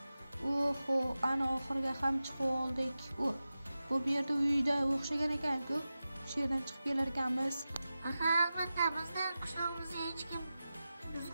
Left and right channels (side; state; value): both; inverted; correlation -0.94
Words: ana oxiriga ham chiqib oldik. Bu yerda uyda o'xshagan ekan-ku. Shu yerdan chiqib kelar ekanmiz. Albatta, bizning qishlog'imizga hech kim